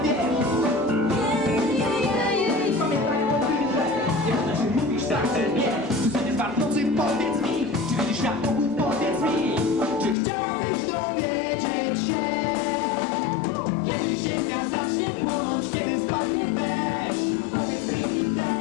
wiesz. Pamiętaj o tym, że nie można, że mówisz tak, że nie. Codziennie w nocy powiedz mi, czy widzisz świat wokół, powiedz mi. Czy chciałabyś dowiedzieć się, kiedy ziemia zacznie płonąć, kiedy spadnie deszcz. Powiedz mi,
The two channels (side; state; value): right; drops out; at 10.2 s